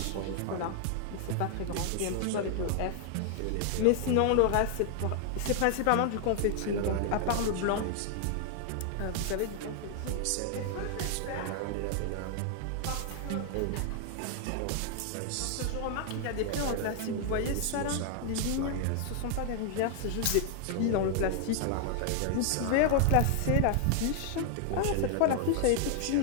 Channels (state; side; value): different; both; correlation 0.00